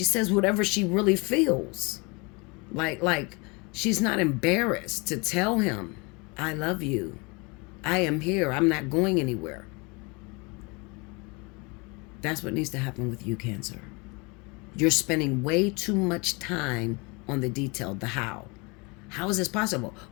feels. Like she's not embarrassed to tell him, I love you. I am here. I'm not going anywhere. That's what needs to happen with you, Cancer. You're spending way too much time on the detail, the how. How is this possible?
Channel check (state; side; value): quieter; right; 28.6 dB